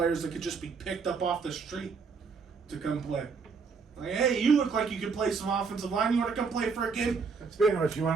that could just be picked up off the street to come play. Like, hey, you look like you could play some offensive line. You want to come play for a game? Speaking of which, you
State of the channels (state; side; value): quieter; left; 5.1 dB